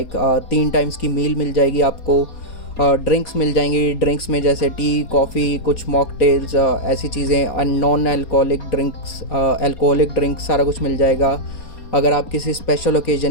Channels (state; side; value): late; right; 4.3 ms